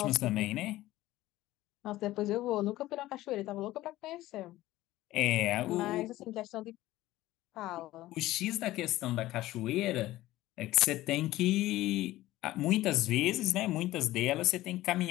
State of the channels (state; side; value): quieter; right; 16.3 dB